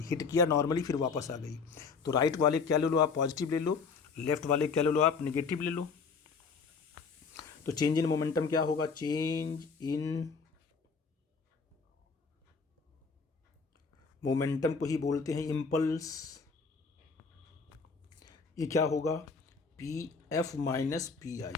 हिट किया नॉर्मली, फिर वापस आ गई। तो राइट वाले क्या ले लो आप, पॉजिटिव ले लो, लेफ्ट वाले क्या ले लो आप, निगेटिव ले लो। तो चेंज इन मोमेंटम क्या होगा, चेंज इन मोमेंटम को ही बोलते हैं इम्पल्स। ये क्या होगा P f minus p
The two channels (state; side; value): quieter; right; 5.1 dB